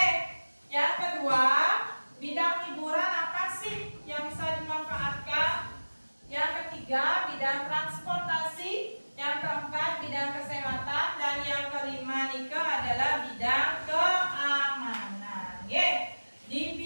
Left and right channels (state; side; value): inverted; both; correlation -1.00